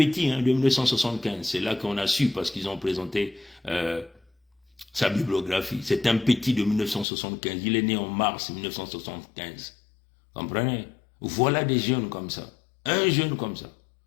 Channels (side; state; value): right; drops out; at 7.1 s